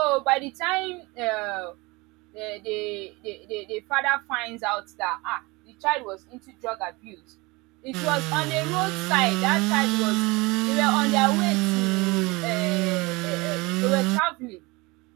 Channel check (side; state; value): left; quieter; 24.2 dB